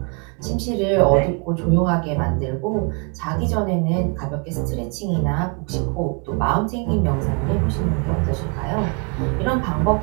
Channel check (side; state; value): left; quieter; 34.1 dB